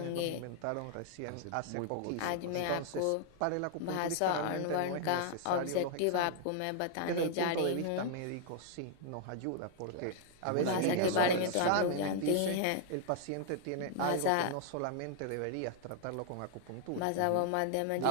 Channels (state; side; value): different; both; correlation 0.00